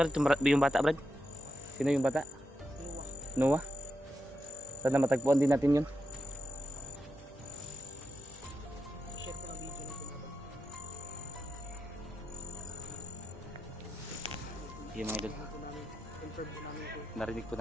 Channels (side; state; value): both; normal; correlation 0.87